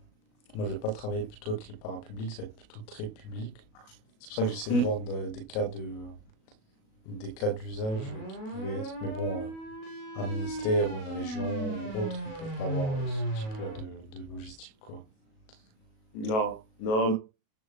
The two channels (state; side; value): late; right; 37 ms